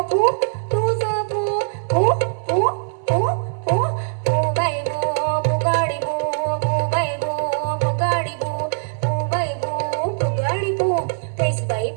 पू तुझं पू पू पू पू पू पू बाई बू बुगाडी बू बाई बू बुगाडी बू बाई बू बुगाडी बू फेस बाई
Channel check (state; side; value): silent; left; 65 dB below the other